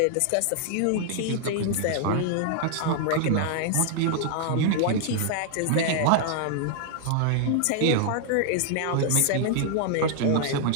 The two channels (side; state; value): both; different; correlation -0.01